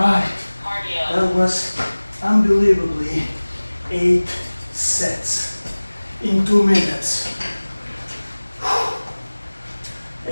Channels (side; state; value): both; inverted; correlation -1.00